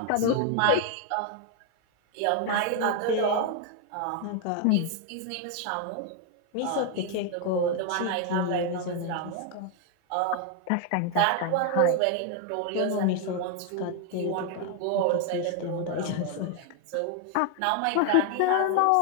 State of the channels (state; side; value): different; both; correlation 0.01